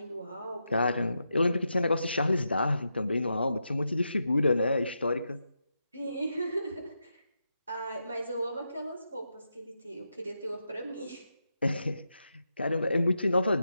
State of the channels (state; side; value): inverted; both; correlation -0.86